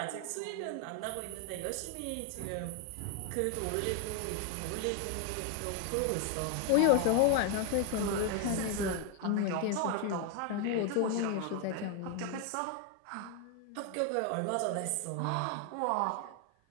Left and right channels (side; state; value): both; different; correlation 0.01